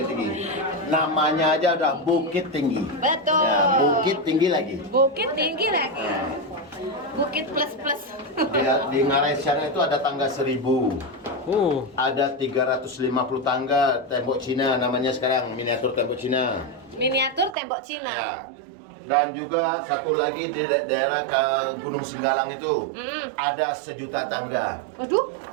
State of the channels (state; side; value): drops out; left; at 17.6 s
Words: Tinggi. Namanya aja udah Bukit Tinggi. Betul. Ya, Bukit Tinggi lagi. Bukit tinggi lagi. Bukit plus. Di Ngarai sana itu ada tangga 1000. Ada 350 tangga tembok Cina namanya sekarang, miniatur tembok Cina. Miniatur tembok Cina. Ya. Dan juga satu lagi di daerah ke Gunung Singgalang itu ada 1 juta tangga. Waduh.